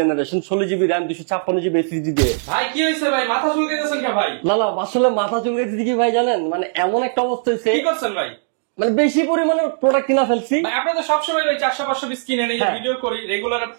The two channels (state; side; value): silent; left; digital silence